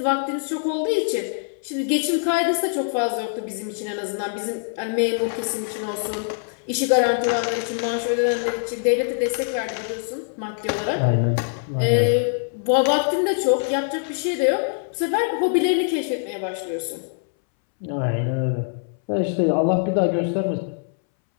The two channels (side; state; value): right; silent; 63 dB below the other